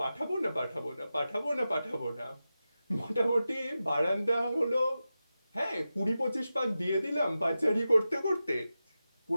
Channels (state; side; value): inverted; both; correlation -0.92